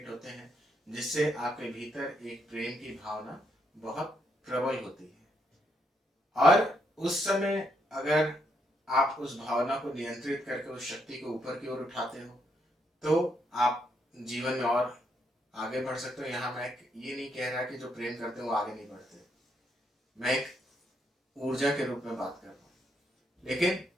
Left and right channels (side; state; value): both; normal; correlation 0.76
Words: होते हैं, जिससे आपके भीतर एक प्रेम की भावना बहुत प्रबल होती है। और उस समय अगर आप उस भावना को नियंत्रित करके उस शक्ति को ऊपर की ओर उठाते हो, तो आप जीवन में और आगे बढ़ सकते हो। यहाँ मैं ये नहीं कह रहा कि जो प्रेम करते हैं वो आगे नहीं बढ़ते, मैं एक ऊर्जा के रूप में बात कर रहा हूँ। लेकिन